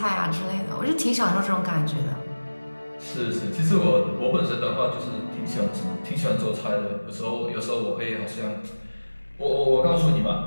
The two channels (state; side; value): inverted; both; correlation -1.00